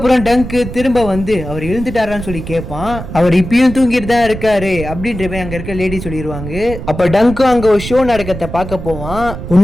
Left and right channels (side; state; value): right; noise; rumble, 9 dB below the sound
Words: டங்கு திரும்ப வந்து அவர் எழுந்துட்டாரான்னு சொல்லி கேட்பான். அவர் இப்பயும் தூங்கிட்டு தான் இருக்காரு அப்படின்ற மாதிரி அங்க இருக்க லேடி சொல்லிடுவாங்க. அப்ப டங்கும் அங்க ஒரு ஷோ நடக்கத்தை பார்க்க போவான்.